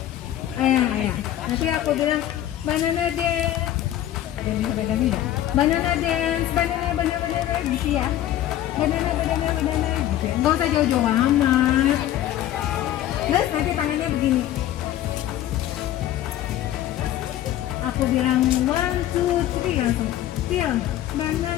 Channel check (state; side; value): quieter; right; 12.6 dB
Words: Ayah. Nanti aku bilang banana dance. Ada yang bisa pegang nggak? Banana dance, banana gitu ya. Banana gitu ya. Nggak usah jauh-jauh amat. Terus nanti tangannya begini. aku bilang 1, 2, 3 langsung peel